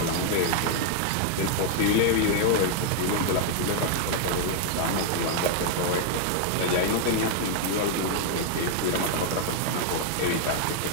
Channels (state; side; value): different; both; correlation 0.00